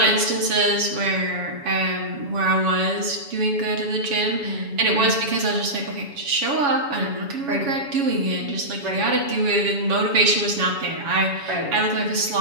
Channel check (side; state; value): left; late; 7.1 ms